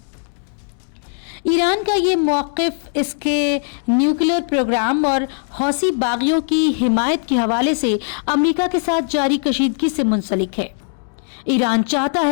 ایران کا یہ موقف اس کے نیوکلیئر پروگرام اور حوثی باغیوں کی حمایت کے حوالے سے امریکہ کے ساتھ جاری کشیدگی سے منسلک ہے۔ ایران چاہتا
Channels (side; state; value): right; silent; digital silence